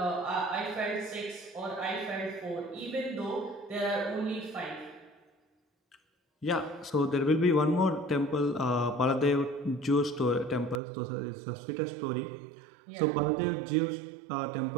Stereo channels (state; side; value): drops out; left; at 10.8 s